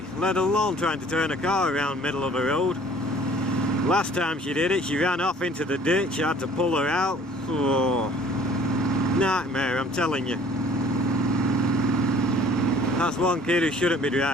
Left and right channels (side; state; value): both; normal; correlation 0.53